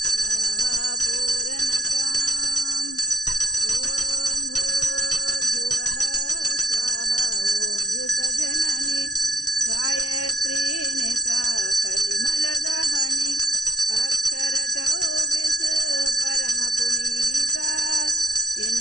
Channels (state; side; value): late; right; 0.68 ms